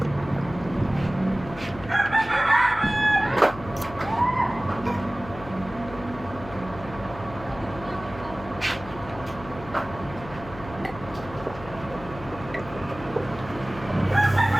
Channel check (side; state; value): left; noise; hum, 15 dB below the sound